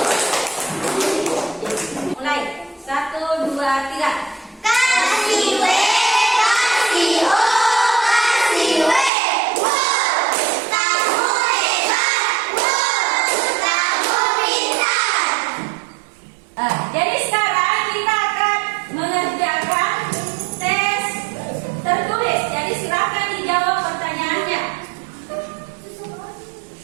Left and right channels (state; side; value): drops out; left; at 9.1 s